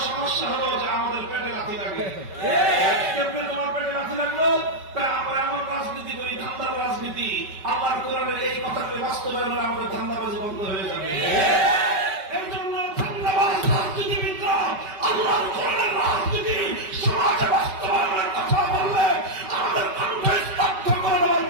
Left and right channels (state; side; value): late; left; 5.2 ms